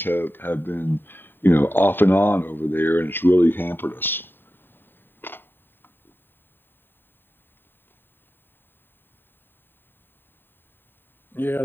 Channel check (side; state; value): right; late; 0.096 ms